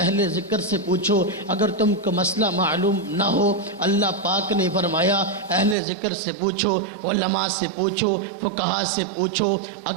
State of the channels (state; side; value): drops out; left; at 5.8 s